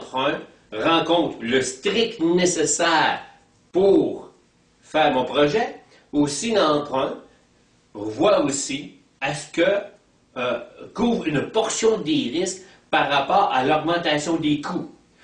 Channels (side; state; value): both; identical; correlation 1.00